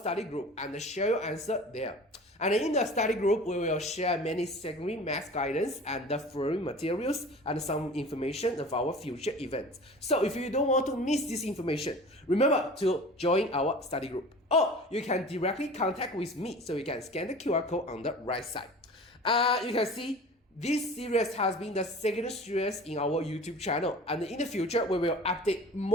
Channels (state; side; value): normal; both; correlation 0.40